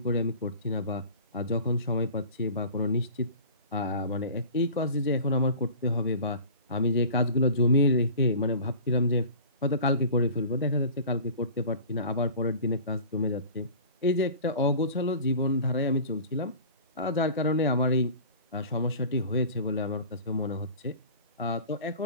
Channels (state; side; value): inverted; both; correlation -0.41